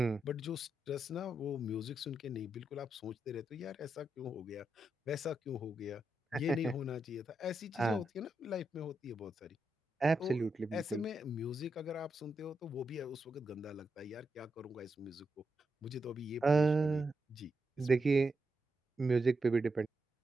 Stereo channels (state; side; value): normal; both; correlation 0.85